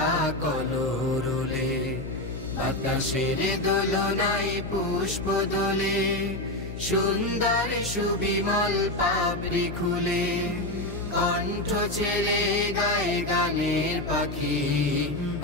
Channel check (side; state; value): left; noise; hum, 8 dB below the sound